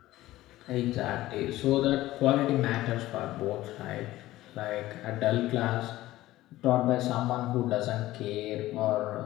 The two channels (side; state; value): right; quieter; 16.2 dB